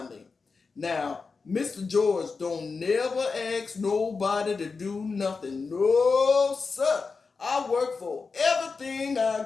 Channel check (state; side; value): quieter; right; 4.6 dB